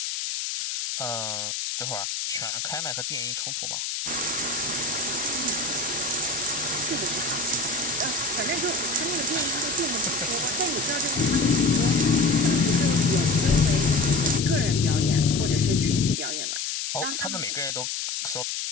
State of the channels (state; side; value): noise; left; hiss, 3 dB below the sound